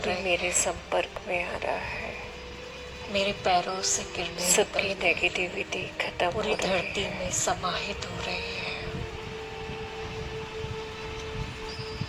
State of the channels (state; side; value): identical; both; correlation 1.00